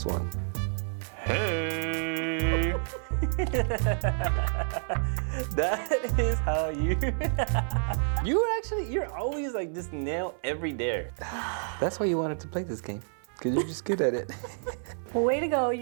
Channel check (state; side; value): silent; left; 58 dB below the other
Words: one. Hey. That is how you. You're always like just nail every dare. That's why you wanted to play this game, because you're just good at it. Well, way to go.